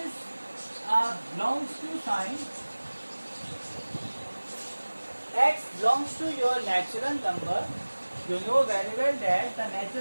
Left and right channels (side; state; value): both; inverted; correlation -1.00